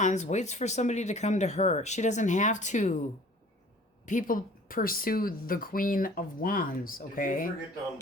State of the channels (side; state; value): both; normal; correlation 0.50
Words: waits for somebody to come to her. She doesn't have to. People pursue the Queen of Wands, okay? Did you forget to